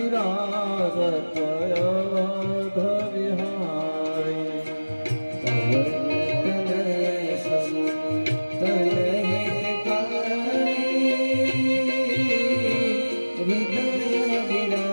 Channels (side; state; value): both; inverted; correlation -1.00